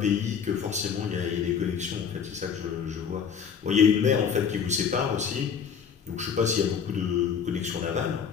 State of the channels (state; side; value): quieter; right; 7.0 dB